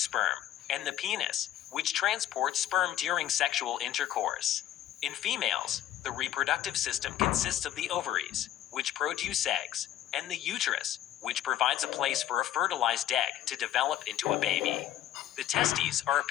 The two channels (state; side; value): quieter; right; 12.2 dB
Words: sperm, and the penis, which transports sperm during sexual intercourse. In females, the reproductive system consists of the ovaries, which produce eggs, and the uterus, which provides a place for a fertilized egg to develop into a baby. The testes are